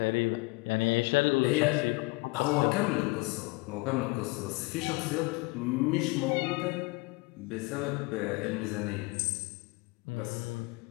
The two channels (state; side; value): quieter; right; 25.8 dB